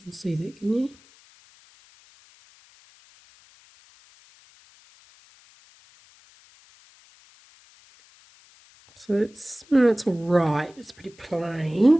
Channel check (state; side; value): noise; left; hiss, 28 dB below the sound